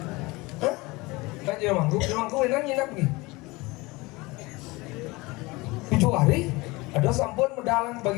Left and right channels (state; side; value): quieter; right; 23.1 dB